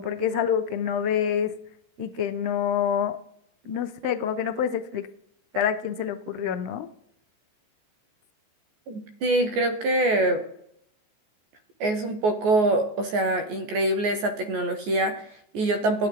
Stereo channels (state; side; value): late; left; 14 ms